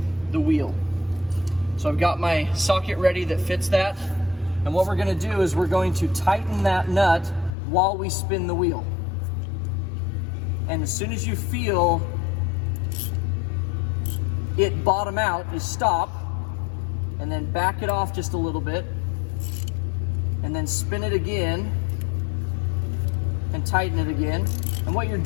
the wheel. So I've got my socket ready that fits that. And what we're going to do is we're going to tighten that nut while we spin the wheel. And as soon as you feel it bottom out, just stop and then back it off just a little bit and then spin it again and tighten it again. And what you're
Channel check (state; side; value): drops out; right; at 7.6 s